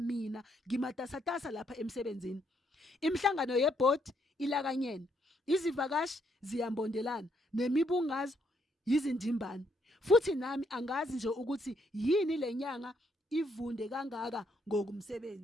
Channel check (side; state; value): both; normal; correlation 0.73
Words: ngimatasatasa lapha emsebenzini imhlangano yeboard ilakanyene izivakashi ziyambondelana nemibungazo yizindimbane futhi nami angazi nje ukuthi yini lenyanga ivunde kangaka